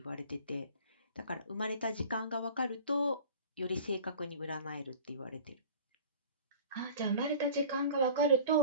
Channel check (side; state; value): both; inverted; correlation -0.44